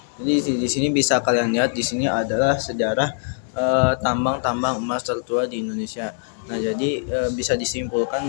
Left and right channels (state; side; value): silent; right; 64 dB below the other